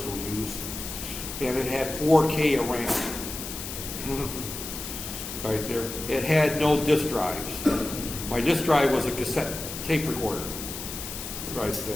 use, and it had 4K of RAM. Right there. It had no disk drives. My disk drive was a cassette tape recorder. Right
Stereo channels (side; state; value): left; noise; hiss, 8 dB below the sound